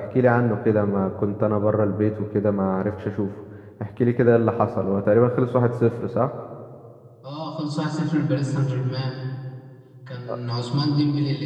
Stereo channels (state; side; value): identical; both; correlation 1.00